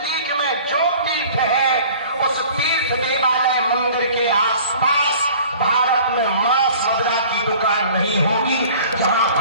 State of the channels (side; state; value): both; inverted; correlation -0.48